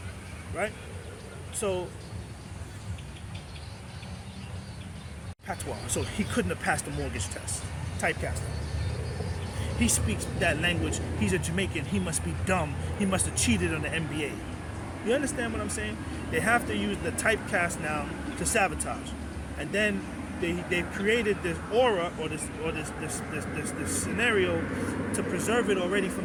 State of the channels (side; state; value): both; identical; correlation 1.00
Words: Right? So, patois. So he couldn't have passed the mortgage test. Typecasting. He speaks that language. He's a Jamaican. He must be dumb. He must have cheated on the NBA. You understand what I'm saying? They have to use the typecast now to sabotage. And then they've created this aura or this scenario to preserve it already